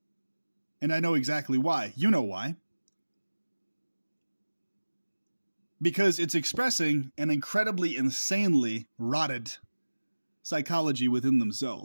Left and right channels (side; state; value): both; inverted; correlation -1.00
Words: And I know exactly why. You know why. Because it's expressing an incredibly, insanely rotted psychology within